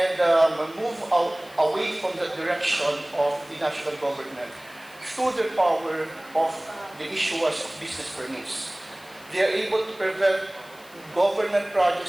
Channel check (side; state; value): left; noise; hiss, 23 dB below the sound